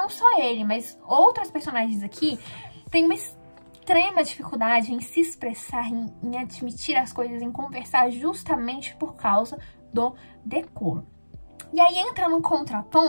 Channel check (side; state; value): both; inverted; correlation -1.00